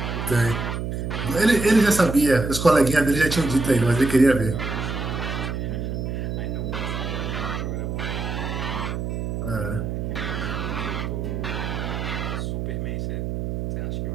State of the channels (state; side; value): noise; right; hum, 3 dB below the sound